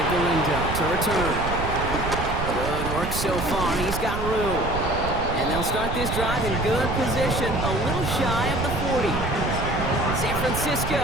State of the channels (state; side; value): noise; right; rumble, 4 dB below the sound